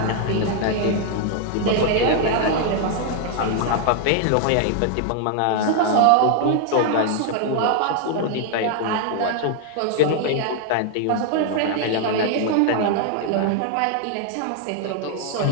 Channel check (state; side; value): different; both; correlation 0.00